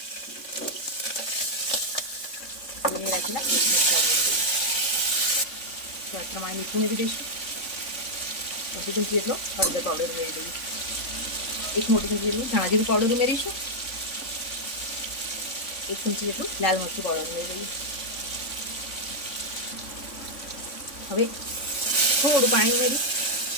ઉમેરી રાખેલા મરચાં ઉમેરી દઈએ। સ્વાદ પ્રમાણે મીઠું ઉમેરી દઈશું। અડધી ચમચી જેટલો હળદર પાવડર ઉમેરી દઈએ। એક મોટી ચમચી જેટલું ધાણા જીરું પાવડર ઉમેરીશું। એક ચમચી જેટલું લાલ મરચું પાવડર ઉમેરી દઈએ। હવે થોડું પાણી ઉમેરી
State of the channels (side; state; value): right; late; 3.6 ms